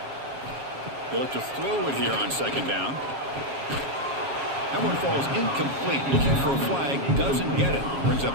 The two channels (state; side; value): late; left; 7.3 ms